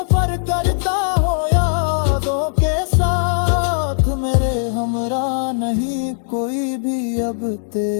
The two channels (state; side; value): silent; right; digital silence